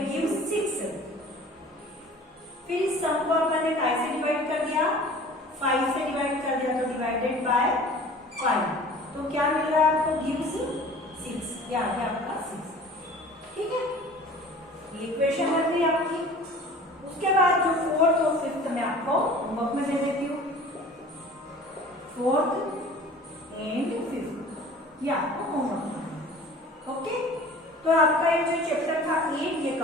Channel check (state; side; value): normal; both; correlation 0.45